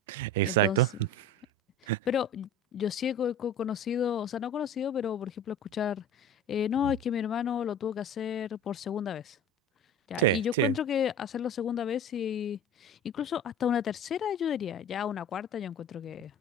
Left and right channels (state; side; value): normal; both; correlation 0.36